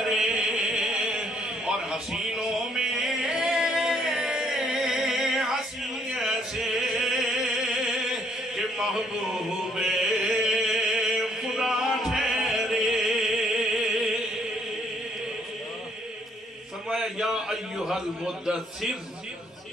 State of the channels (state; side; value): normal; both; correlation 0.68